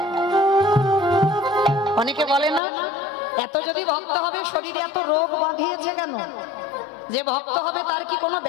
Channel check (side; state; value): right; drops out; at 2.6 s